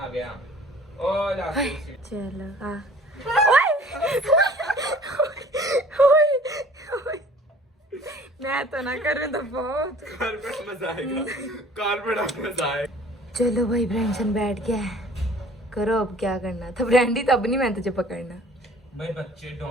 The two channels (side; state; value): both; normal; correlation 0.50